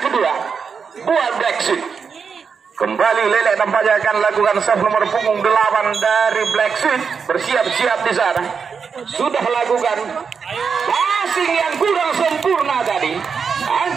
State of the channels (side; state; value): left; quieter; 6.0 dB